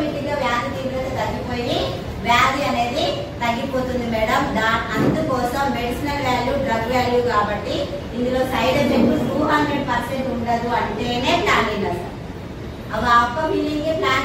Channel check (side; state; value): both; identical; correlation 1.00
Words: గా వ్యాధి తీవ్రత తగ్గిపోయి వ్యాధి అనేది తగ్గిపోతుంది మేడం. అందుకోసం మెడిసినల్ వాల్యూ డ్రగ్ వాల్యూ కాబట్టి ఇందులో సైడ్ ఎఫెక్ట్ 200% ఉండదు అంటేనే ప్లాన్ విన్నారు. అవి అప్ప ఫీలింగ్